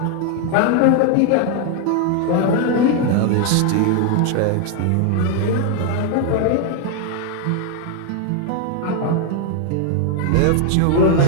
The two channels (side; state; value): both; different; correlation 0.01